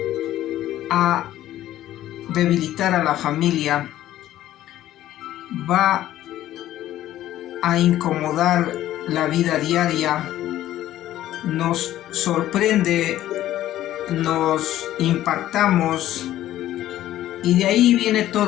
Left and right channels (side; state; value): right; quieter; 13.5 dB